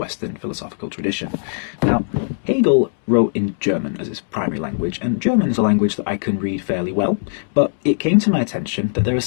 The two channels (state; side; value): silent; right; digital silence